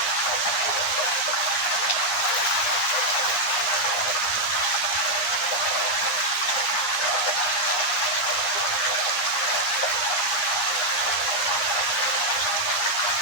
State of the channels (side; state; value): right; late; 10 ms